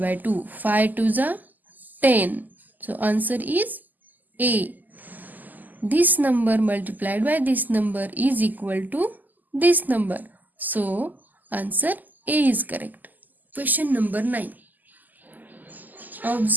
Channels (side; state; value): left; late; 0.084 ms